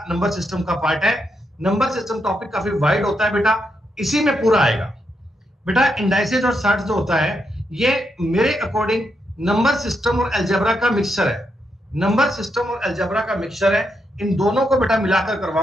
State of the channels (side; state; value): both; normal; correlation 0.81